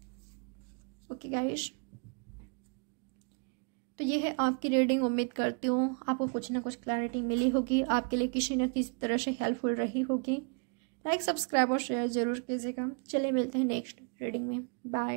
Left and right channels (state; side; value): quieter; left; 37.7 dB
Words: ओके गाइस, तो ये है आपकी रीडिंग। उम्मीद करती हूँ आपको कुछ ना कुछ क्लैरिटी मिली होगी, आपके लिए किसी न किसी तरह से हेल्पफुल रही होगी। लाइक, सब्सक्राइब और शेयर जरूर कीजिएगा। चलिए मिलते हैं नेक्स्ट रीडिंग में।